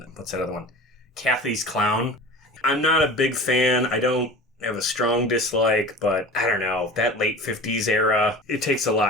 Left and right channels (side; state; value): both; normal; correlation 0.36